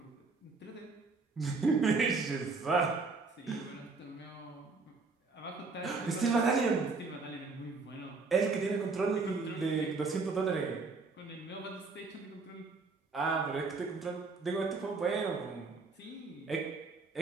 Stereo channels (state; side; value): quieter; left; 4.1 dB